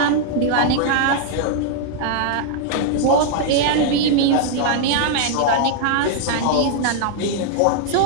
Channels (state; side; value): different; both; correlation 0.00